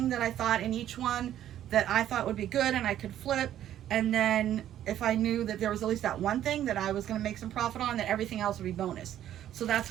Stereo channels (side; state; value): left; quieter; 11.6 dB